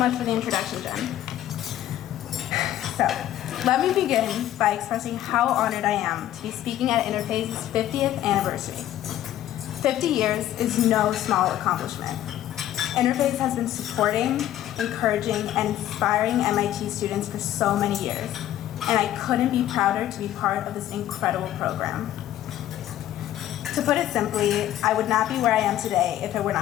for the introduction, Jen. So, let me begin by expressing how honored I am to be speaking at Interphase's 50th anniversary. 50 years is no small accomplishment. Interphase has been supporting, encouraging, and inspiring MIT students for so many years, and I couldn't be prouder to be part of this incredible program. To put it simply, I would not be where I am today if it were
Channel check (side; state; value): right; quieter; 12.7 dB